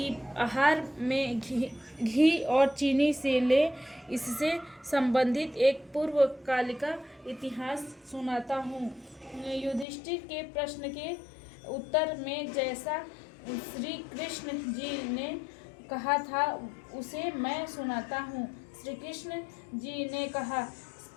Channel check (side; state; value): right; drops out; at 9.9 s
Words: आहार में घी और चीनी से ले। इससे संबंधित एक पूर्वकालिक इतिहास सुनाता हूँ। युधिष्ठिर के प्रश्न के उत्तर में जैसा श्री कृष्ण जी ने कहा था उसे मैं सुनाता हूँ। श्री कृष्ण जी ने कहा